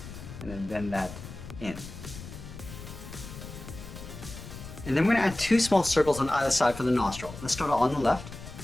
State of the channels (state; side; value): noise; left; rumble, 12 dB below the sound